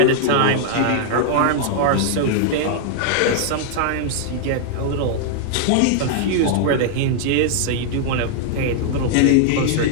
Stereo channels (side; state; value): both; different; correlation -0.01